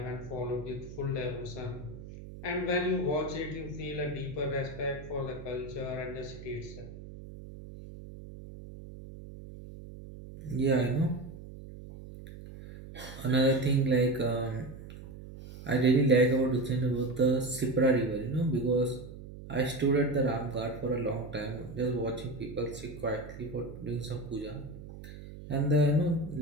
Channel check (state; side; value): noise; right; hum, 14 dB below the sound